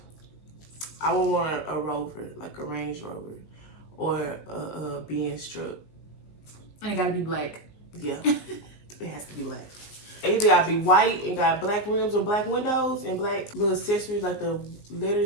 I would want a Rover, like a Range Rover, or a Benz truck. And it gotta be black. Yeah, it has to be black. Either gotta be white and got black rims or black windows and black little accessories like the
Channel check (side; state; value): right; late; 19 ms